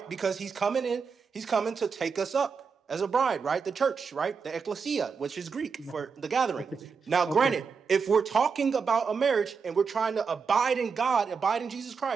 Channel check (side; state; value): left; quieter; 5.6 dB